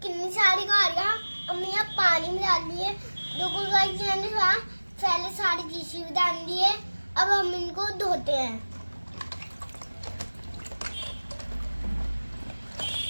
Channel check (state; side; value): inverted; both; correlation -1.00